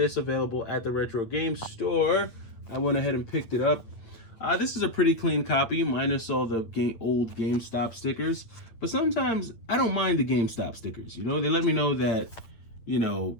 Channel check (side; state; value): right; late; 8.8 ms